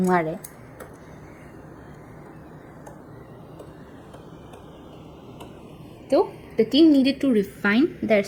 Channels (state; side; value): identical; both; correlation 1.00